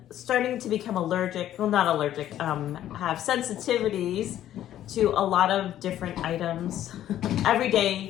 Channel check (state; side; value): quieter; right; 12.0 dB